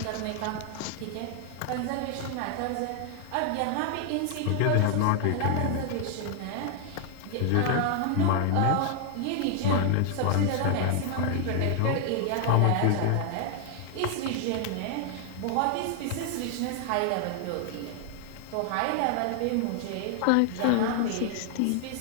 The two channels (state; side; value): different; both; correlation 0.00